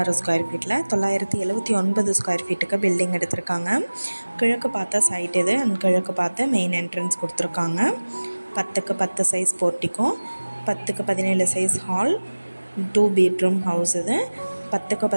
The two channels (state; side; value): inverted; both; correlation -1.00